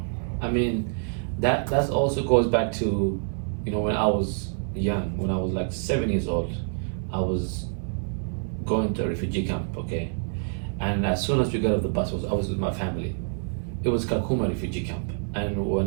I mean, that also goes back to, when I was young, when I was like 7 years old, I was going to a refugee camp, okay? And as soon as we got off the bus, I was with my family. It was Kakuma refugee camp. And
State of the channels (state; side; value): silent; left; digital silence